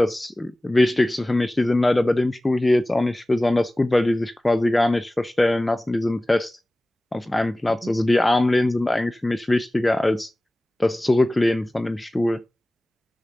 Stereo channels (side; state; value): both; normal; correlation 0.98